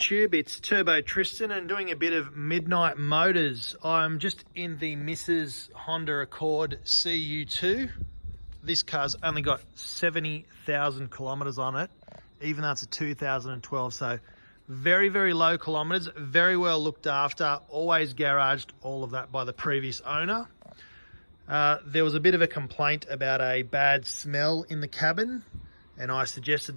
it's Turbo Tristan and doing a bit of midnight motors. I'm just in the Mrs. Honda Accord CU2. This car's only got 70,000 kilometers on it, even though it's a 2012, so very, very low kilometers, very well looked after, always garaged, all of that by the previous owner. There was a bit of a complaint about a bad smell in the cabin, and I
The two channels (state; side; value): inverted; both; correlation -1.00